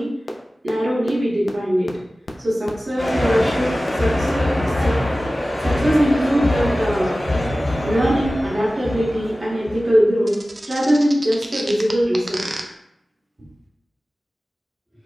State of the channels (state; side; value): normal; both; correlation 0.96